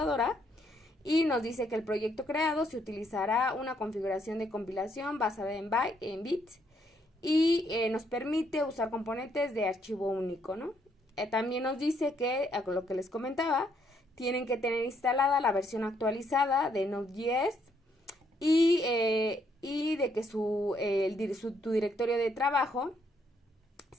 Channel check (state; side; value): normal; both; correlation 0.72